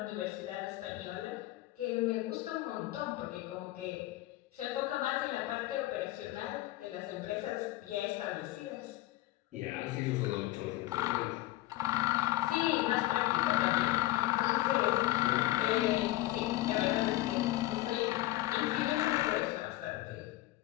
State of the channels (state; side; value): quieter; right; 16.4 dB